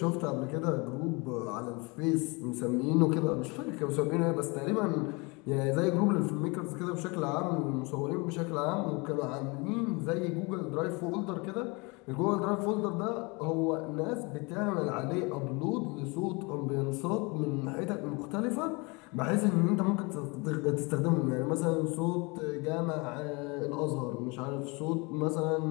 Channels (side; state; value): right; quieter; 28.1 dB